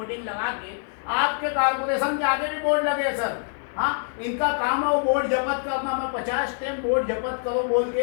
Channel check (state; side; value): silent; right; 62 dB below the other